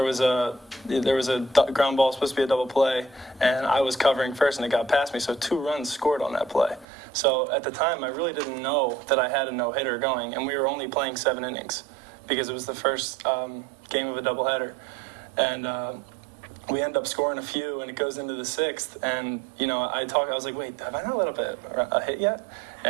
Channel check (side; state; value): left; drops out; at 6.9 s